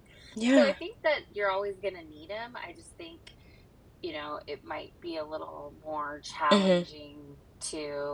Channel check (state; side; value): identical; both; correlation 1.00